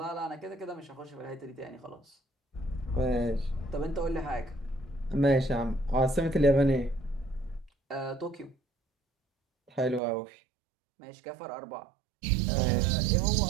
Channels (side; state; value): left; drops out; at 10.0 s